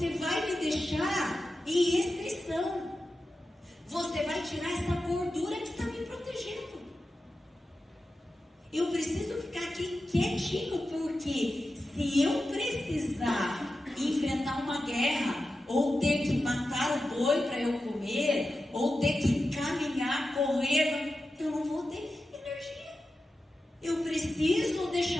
vai me deixar em restrição. Você vai tirar essa gordura que está me protegendo. Eu preciso ficar aqui quietinho, porque se eu precisar enfrentar uma guerra, ou ter que matar o boi para eu comer, ou ter que caminhar, correr, eu não vou ter energia. Eu preciso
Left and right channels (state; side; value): normal; both; correlation 0.92